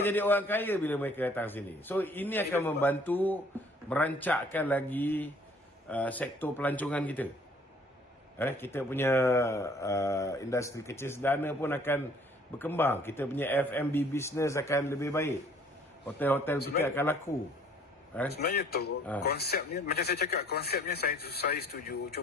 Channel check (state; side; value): normal; both; correlation 0.57